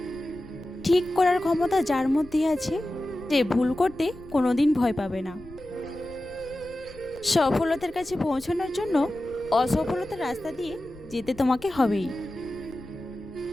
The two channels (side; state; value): left; noise; rumble, 20 dB below the sound